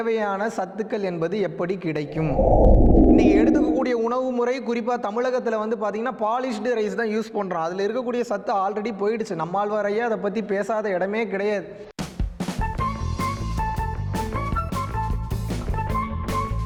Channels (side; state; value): both; identical; correlation 1.00